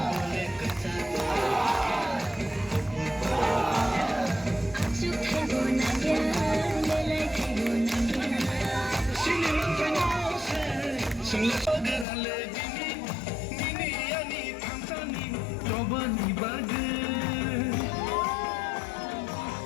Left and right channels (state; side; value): drops out; right; at 12.1 s